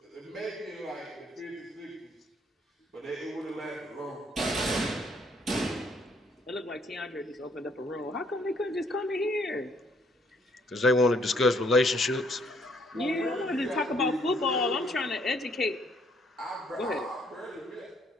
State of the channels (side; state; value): both; normal; correlation 0.67